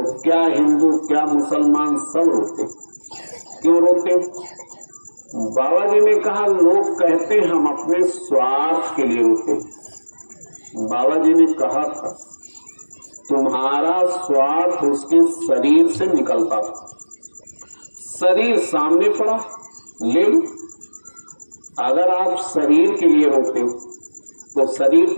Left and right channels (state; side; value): inverted; both; correlation -1.00